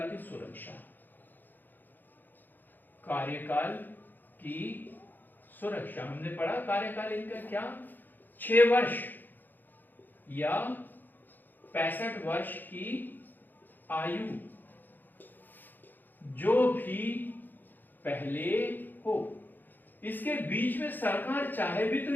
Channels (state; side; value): late; right; 0.089 ms